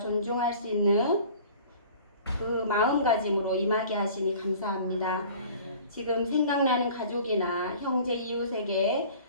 수 있는 그 마음가짐으로 임하게 하시니 감사합니다. 지금 생각나는 가족이나 형제 이웃에게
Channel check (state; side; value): inverted; both; correlation -0.46